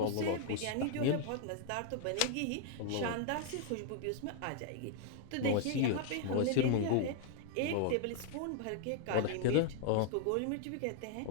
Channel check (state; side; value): different; both; correlation 0.00